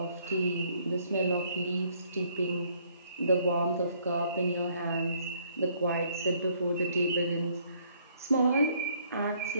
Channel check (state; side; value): inverted; both; correlation -0.65